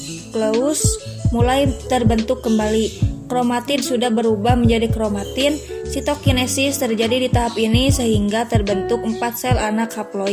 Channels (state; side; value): identical; both; correlation 1.00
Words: mulai terbentuk kembali. Kromatid sudah berubah menjadi kromatin. Sitokinesis terjadi di tahap ini sehingga terbentuk 4 sel anak